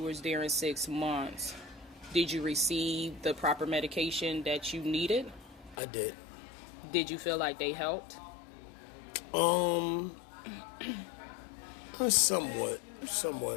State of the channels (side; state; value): right; drops out; at 5.8 s